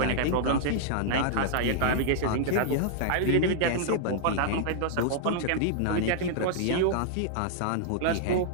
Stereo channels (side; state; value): both; different; correlation -0.01